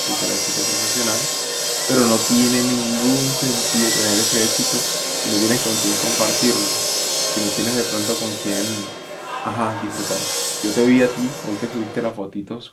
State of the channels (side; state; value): both; identical; correlation 1.00